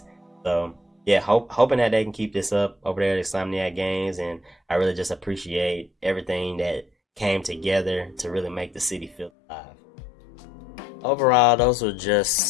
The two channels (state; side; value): drops out; right; at 9.3 s